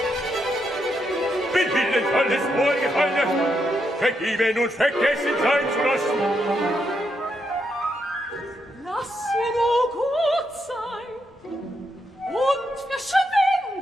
bin Willen alles Vorgefallene, vergeben und vergessen sein zu lassen. Lass ihr nur gut sein und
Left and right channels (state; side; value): normal; both; correlation 0.81